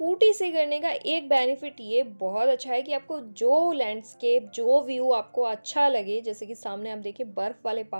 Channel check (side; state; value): both; inverted; correlation -1.00